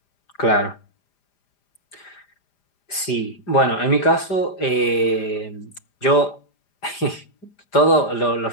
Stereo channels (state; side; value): late; right; 5.0 ms